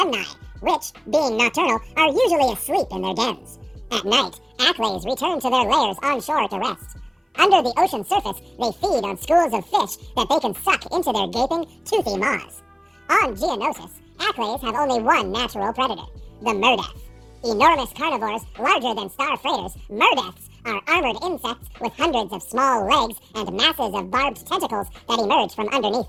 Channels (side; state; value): both; identical; correlation 1.00